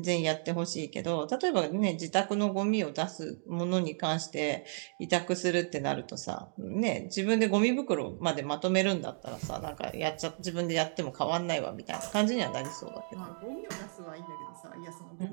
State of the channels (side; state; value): left; silent; 56 dB below the other